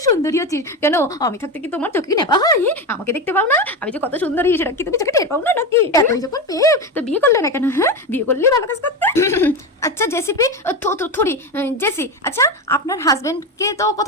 সুন্দরী আছিস। কেন আমি থাকতে কি তোমার চোখে নেপা হয়? আমাকে দেখতে পাও না আমি যে কত সুন্দরী, সেটা কি তুমি চোখে টের পাও না নাকি? এতই যখন পেয়ে তো বিয়ে করলে না কেন? হ্যাঁ, বিয়ে করলে ভালো কাজ করতে। আচ্ছা জেসিপি, থরি জেসি, আচ্ছা আপনার হাজবেন্ডকে তো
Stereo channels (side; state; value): both; normal; correlation 0.18